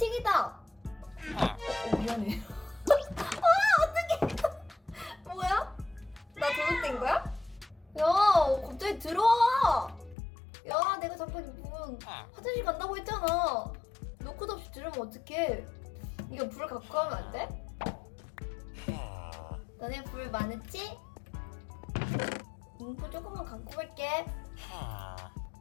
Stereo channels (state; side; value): drops out; right; at 10.2 s